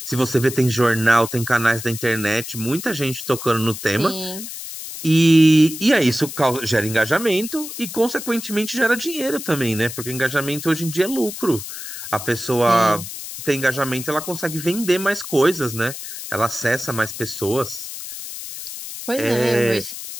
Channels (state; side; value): noise; left; hiss, 9 dB below the sound